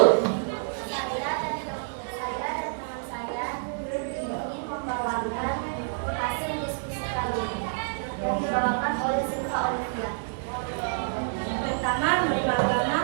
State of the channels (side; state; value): left; silent; 59 dB below the other